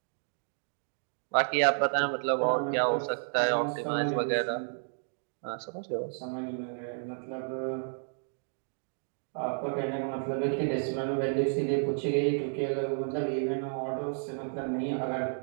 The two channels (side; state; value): left; silent; digital silence